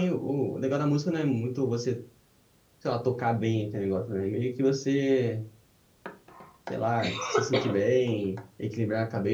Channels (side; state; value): both; identical; correlation 1.00